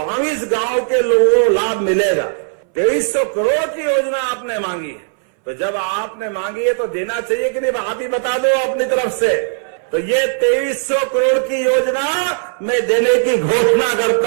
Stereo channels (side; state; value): left; silent; 64 dB below the other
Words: गांव के लोगों को लाभ मिलेगा। 2300 करोड़ की योजना आपने मांगी है, तो जब आपने मांगी है तो देना चाहिए कि नहीं? आप ही बता दो अपनी तरफ से। तो ये 2300 करोड़ की योजना मैं देने की घोषणा